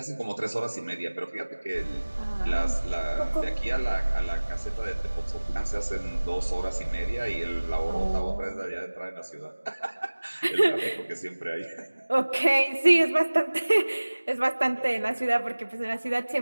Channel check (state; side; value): inverted; both; correlation -1.00